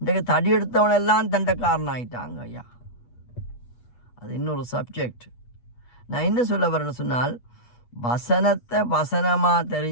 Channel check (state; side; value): late; right; 8.3 ms